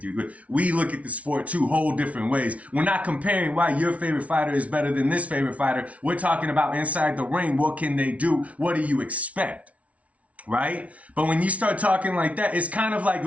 you. We look at the sport two whole different ways. We're not comparing why your favorite fighter is better than this favorite fighter. We're talking about inside the ring. What can they do? What do you expect? Right? But when you start talking like that, it's kind of like,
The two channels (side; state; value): left; late; 0.066 ms